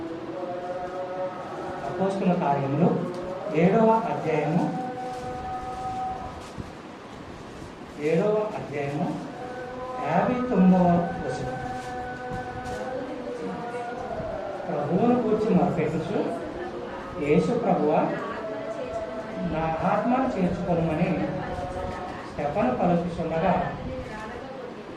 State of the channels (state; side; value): identical; both; correlation 1.00